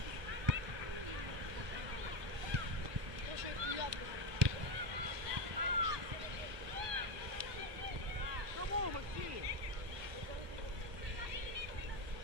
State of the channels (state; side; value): late; left; 1.2 ms